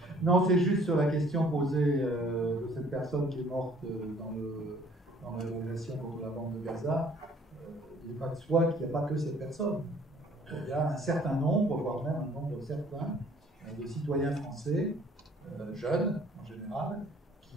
Non, c'est juste sur la question posée de cette personne qui est morte dans la révolution contre la bande de Gaza. Il n'est pas de soi qu'il n'y a pas que cette personne. Il y a un certain nombre, voire même un nombre certain, de citoyens français, jeunes en général,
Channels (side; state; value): both; normal; correlation 0.57